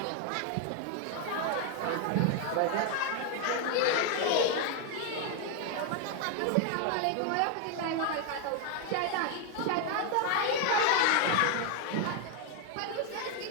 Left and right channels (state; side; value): different; both; correlation 0.01